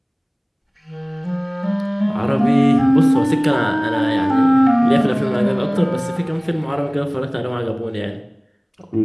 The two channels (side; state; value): both; identical; correlation 1.00